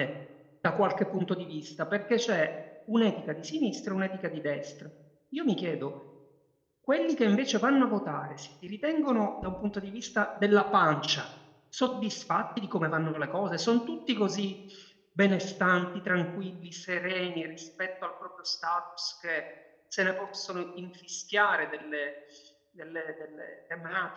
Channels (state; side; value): identical; both; correlation 1.00